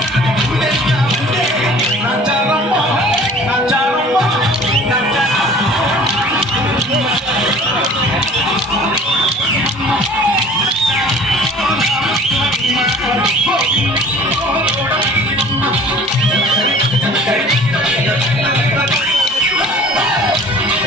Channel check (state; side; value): normal; both; correlation 0.48